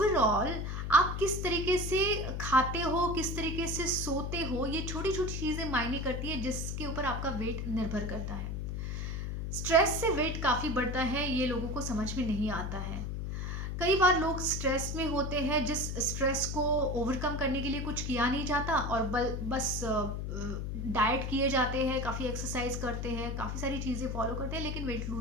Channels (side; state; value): left; noise; hum, 3 dB below the sound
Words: आप किस तरीके से खाते हो, किस तरीके से सोते हो, ये छोटी छोटी चीज़ें मायने करती है, जिसके ऊपर आपका वेट निर्भर करता है। स्ट्रेस से वेट काफ़ी बढ़ता है, ये लोगों को समझ में नहीं आता है। कई बार लोग स्ट्रेस में होते हैं, जिस स्ट्रेस को ओवरकम करने के लिए कुछ किया नहीं जाता और बस डाइट किए जाते हैं, काफ़ी एक्सरसाइज करते हैं, काफ़ी सारी चीज़ें फॉलो करते हैं, लेकिन वेट